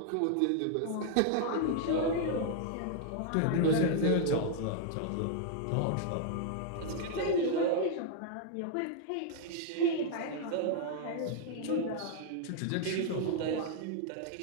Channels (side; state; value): both; different; correlation -0.01